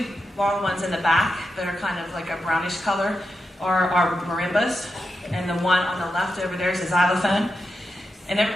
long ones in the back that are kind of like a brownish color are marimbas, and the one on the left over there is a xylophone. And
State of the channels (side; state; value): both; normal; correlation 0.88